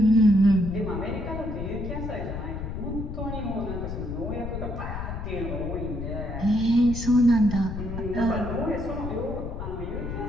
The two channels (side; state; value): left; noise; rumble, 6 dB below the sound